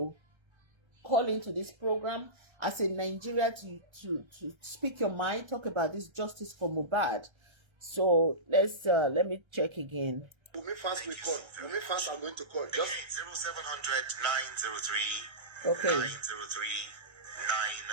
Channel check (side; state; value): left; late; 1.3 ms